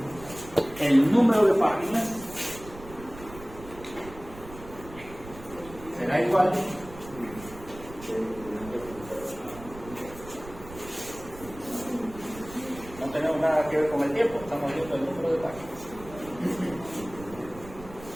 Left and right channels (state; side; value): noise; right; rumble, 16 dB below the sound